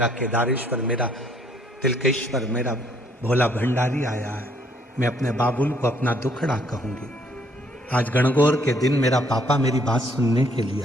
केदारेश्वर, मेरा तिलकेश्वर, मेरा भोला भंडारी आया है। मैं अपने बाबुल को अपना दुखड़ा कहूंगी। आज गणगौर के दिन मेरा पापा मेरी बात सुनने के लिए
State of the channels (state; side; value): normal; both; correlation 0.66